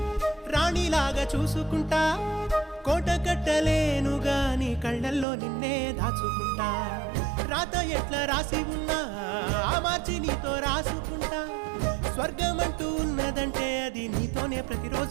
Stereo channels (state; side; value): drops out; left; at 5.2 s